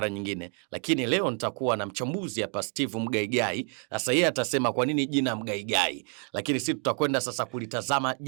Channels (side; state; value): left; quieter; 38.1 dB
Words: nyingine, lakini leo nitakuwa na mchambuzi hapa, Steve Mgaigai. Sasa yeye atasema kwa nini jina Mgaigai, lakini sisi tutakwenda sasa kulitazama